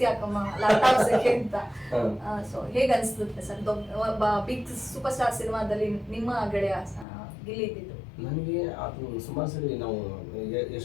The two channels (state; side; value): drops out; right; at 7.1 s